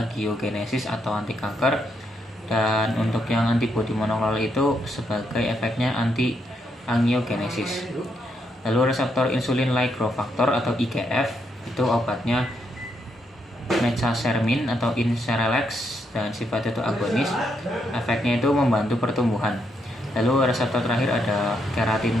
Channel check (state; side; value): normal; both; correlation 0.78